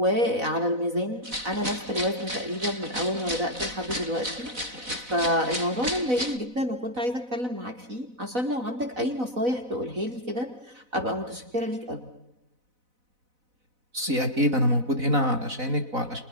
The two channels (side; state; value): left; late; 4.0 ms